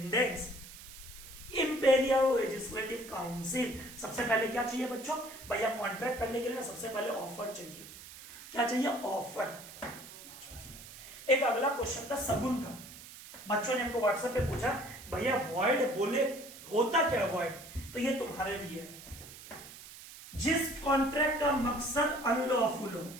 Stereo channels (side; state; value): right; noise; hiss, 16 dB below the sound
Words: imperial legislative council. सबसे पहले क्या चाहिए बच्चों? भैया कॉन्ट्रैक्ट करने के लिए सबसे पहले ऑफर चाहिए। क्या चाहिए? ऑफर। एक अगला क्वेश्चन था सगुन का, बच्चों ने हमको व्हाट्सएप पे पूछा, भैया वॉइड बोले होता क्या वॉइड? तो ये तुम्हारे लिए है, जिस कॉन्ट्रैक्ट का मकसद अनलॉफुल हो।